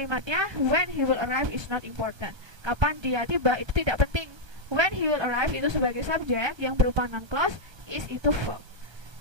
when he will arrive is not important. Kapan dia tiba itu tidak penting. When he will arrive itu sebagai subjek yang berupa noun clause, is itu verb.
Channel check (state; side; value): late; left; 1.3 ms